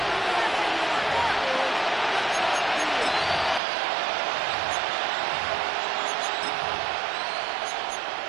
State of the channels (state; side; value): drops out; left; at 3.6 s